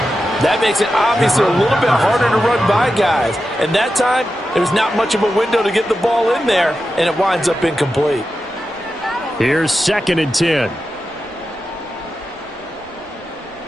That makes it obviously a little bit harder to run by guys. And that time, there's not much of a window to get the ball in there, and it winds up incomplete. Here's 2nd and 10.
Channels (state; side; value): normal; both; correlation 0.91